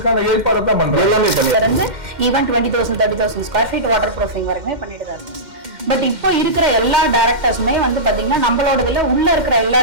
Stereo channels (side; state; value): left; late; 2.1 ms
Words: ஏற்பாடு தான் பண்றாங்க. எல்லாமே பண்ணி even 20,000 30,000 square feet water proofing வரைக்குமே பண்ணிட்டு தான் இருக்கு. பட் இப்போ இருக்கிற எல்லா டைரக்டர்ஸுமே வந்து பாத்தீங்கன்னா நம்மளோட உள்ள இருக்கிற எல்லா